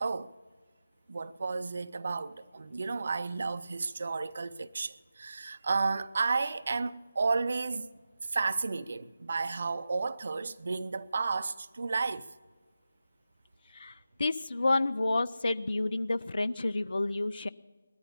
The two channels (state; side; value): inverted; both; correlation -0.92